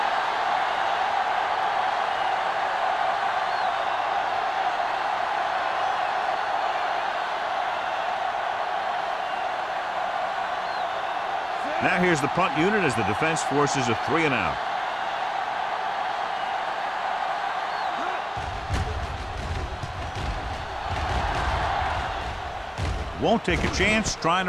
Now here's the punt unit as the defense forces a 3-and-out. Won't take a chance trying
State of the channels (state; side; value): identical; both; correlation 1.00